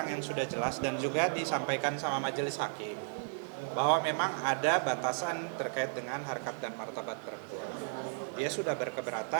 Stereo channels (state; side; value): silent; left; 55 dB below the other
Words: yang sudah jelas dan juga disampaikan sama majelis hakim bahwa memang ada batasan terkait dengan harkat dan martabat perempuan. Dia sudah